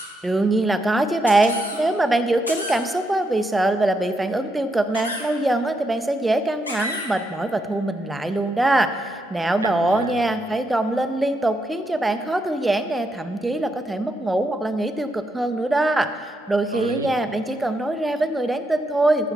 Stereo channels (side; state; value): both; normal; correlation 0.80